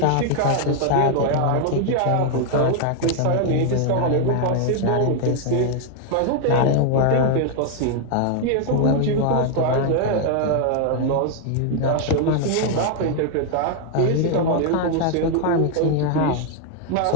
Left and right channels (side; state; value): both; different; correlation 0.00